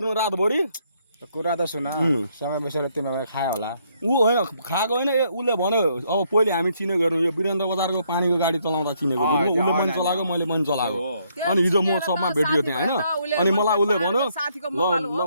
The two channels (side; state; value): both; inverted; correlation -0.71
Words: रातभरि कुरा त सुन सँगै बसेर तिमीहरू खायो होला ऊ होइन खाएको होइन उसले भन्यो अब पहिले हामी चिनेको हेर्नु यो वीरेन्द्र बजारको पानीको गाडी चलाउँदा चिनेको उसले पनि चलाएको मैले पनि चलाएको अनि हिजो म सबमा भेटियो त्यहाँ होइन अनि मलाई उसले भन्यो ल